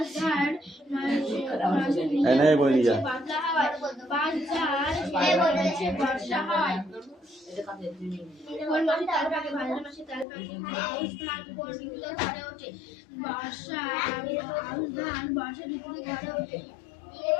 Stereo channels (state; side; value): drops out; right; at 10.2 s